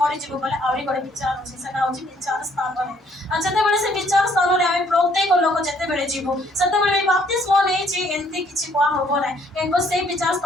बोले आहरी गोटे विचार अच्छे से विचार स्थान है जिते से विचार स्थान में आम प्रत्येक लोक जिते जीव से बाप्तिस्म नहीं एमती किसी कह हम ना कहीं से विचार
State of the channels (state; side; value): normal; both; correlation 0.64